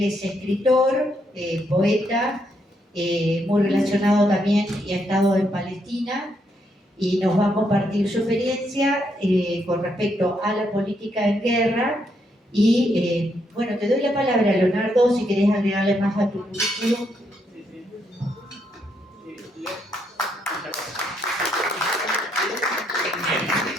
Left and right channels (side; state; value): both; normal; correlation 0.76